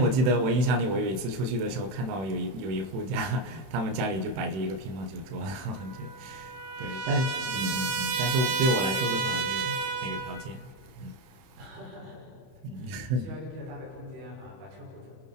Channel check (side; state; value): left; late; 31 ms